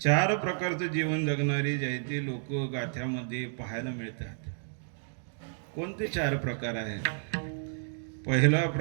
प्रकारचं जीवन जगणारी जे ते लोक गाथ्यामध्ये पाहायला मिळतात. कोणते 4 प्रकार आहेत? पहिला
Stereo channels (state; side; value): silent; left; digital silence